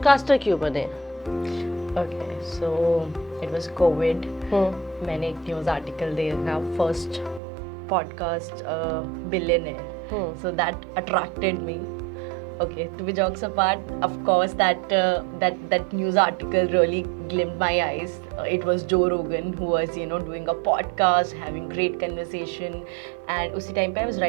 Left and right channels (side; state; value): left; drops out; at 7.4 s